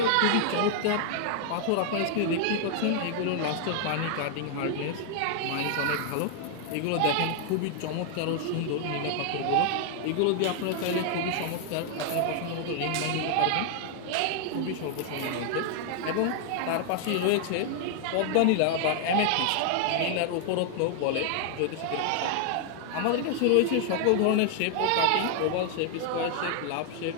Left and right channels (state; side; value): different; both; correlation 0.00